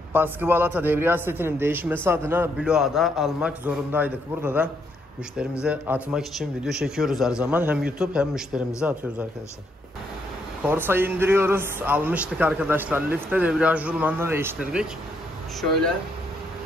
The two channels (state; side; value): normal; both; correlation 0.75